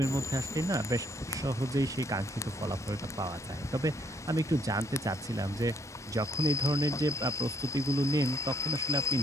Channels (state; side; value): normal; both; correlation 0.69